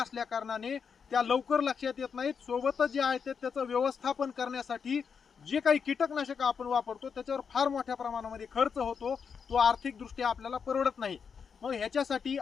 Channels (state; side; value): quieter; right; 6.3 dB